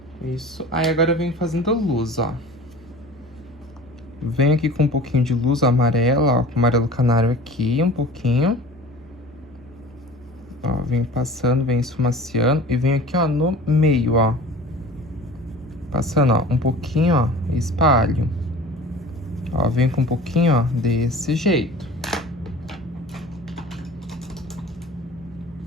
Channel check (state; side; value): normal; both; correlation 0.40